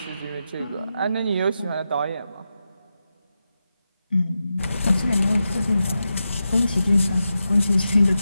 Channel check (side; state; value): both; inverted; correlation -0.90